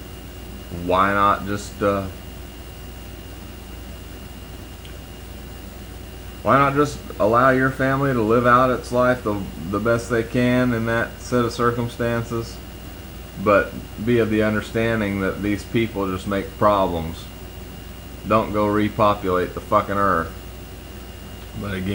Why not just allow your family to live out its life the best they can in that set of circumstances, but be of the understanding that these people just make problems. Don't go repopulate the fucking earth. But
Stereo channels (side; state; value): both; identical; correlation 1.00